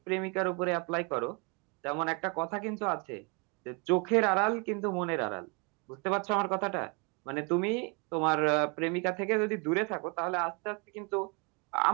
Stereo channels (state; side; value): quieter; left; 32.2 dB